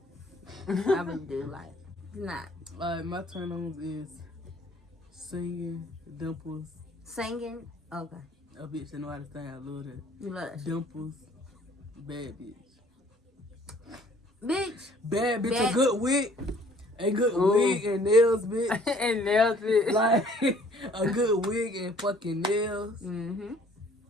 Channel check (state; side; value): normal; both; correlation 0.57